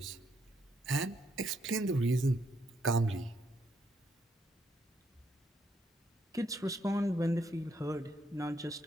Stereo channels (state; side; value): normal; both; correlation 0.74